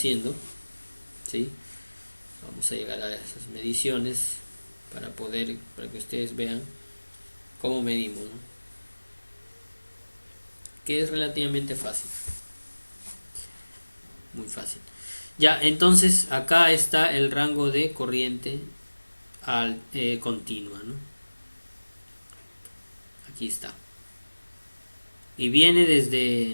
¿sí? Vamos a llegar a esas mediciones para que ustedes vean cómo medimos, ¿no? Que es relativamente fácil, muy fácil. Ya, entonces acá está el rango de corriente continua, ¿no? Aquí está. Y viene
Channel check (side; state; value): both; inverted; correlation -1.00